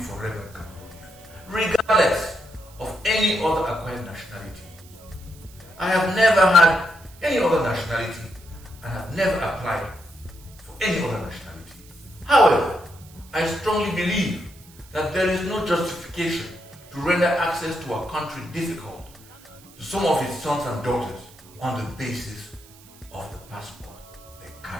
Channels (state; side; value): noise; right; hiss, 24 dB below the sound